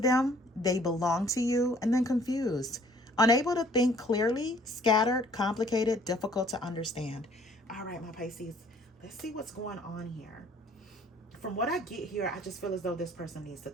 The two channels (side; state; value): both; normal; correlation 0.58